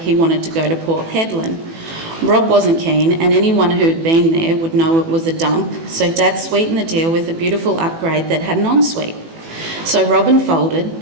wanted to go to Port Hedland. Rob wasn't keen, and anyone who'd been there would know it was a dump, so Dad sweetened the deal with a beautiful upgrade that had an ensuite. So Robin folded,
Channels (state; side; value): late; left; 18 ms